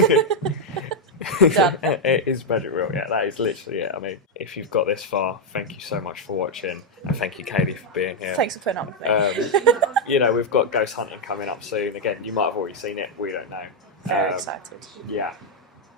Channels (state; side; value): normal; both; correlation 0.00